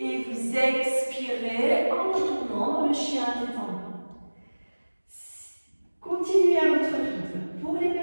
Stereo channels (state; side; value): inverted; both; correlation -1.00